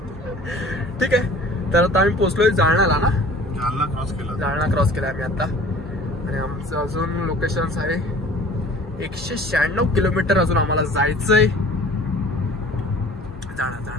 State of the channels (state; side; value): normal; both; correlation 0.47